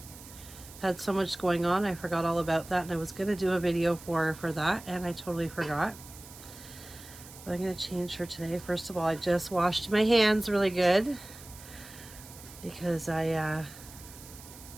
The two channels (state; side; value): noise; right; hiss, 17 dB below the sound